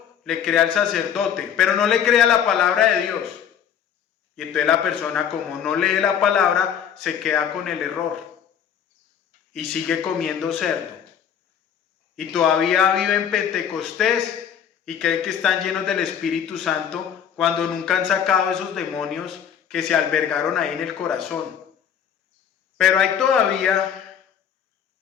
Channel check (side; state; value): right; quieter; 8.5 dB